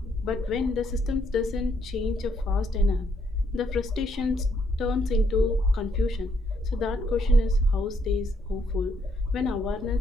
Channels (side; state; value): both; normal; correlation 0.73